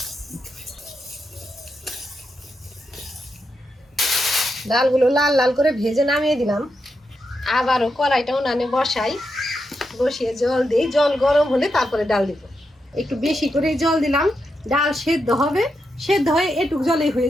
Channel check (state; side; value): normal; both; correlation 0.85